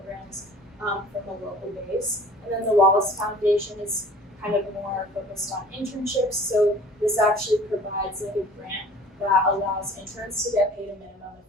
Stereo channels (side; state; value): both; normal; correlation 0.47